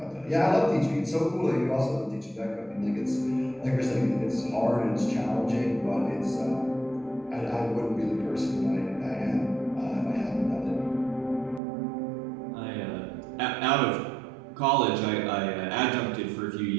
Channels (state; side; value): drops out; left; at 11.6 s